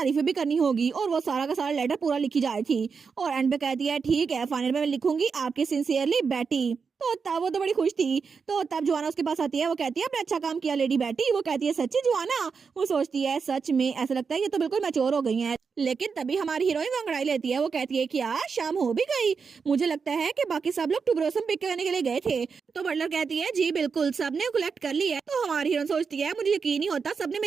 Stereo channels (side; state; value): left; quieter; 5.5 dB